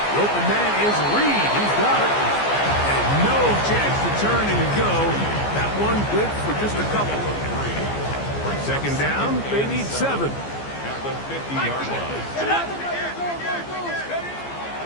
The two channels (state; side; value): late; right; 14 ms